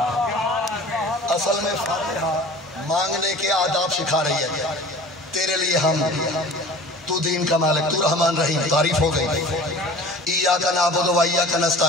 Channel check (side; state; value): both; normal; correlation 0.42